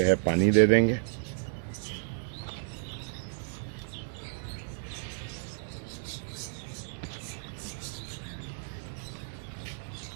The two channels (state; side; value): silent; left; 56 dB below the other